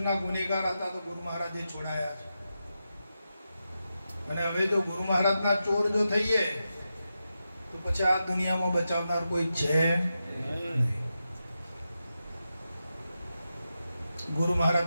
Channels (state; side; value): inverted; both; correlation -0.89